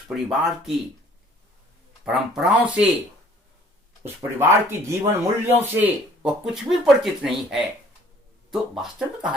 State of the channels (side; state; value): both; normal; correlation 0.56